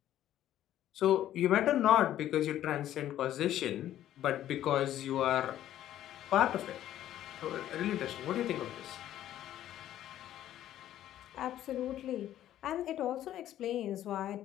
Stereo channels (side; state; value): right; quieter; 12.3 dB